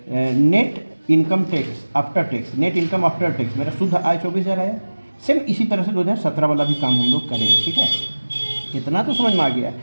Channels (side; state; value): both; inverted; correlation -1.00